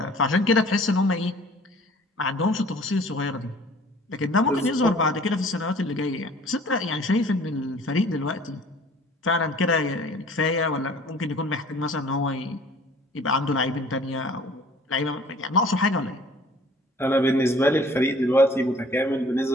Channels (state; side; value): normal; both; correlation 0.51